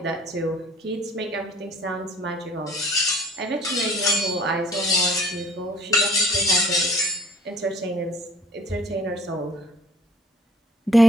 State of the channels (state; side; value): normal; both; correlation 0.54